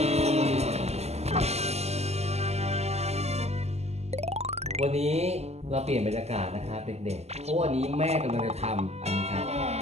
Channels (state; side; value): late; left; 0.31 ms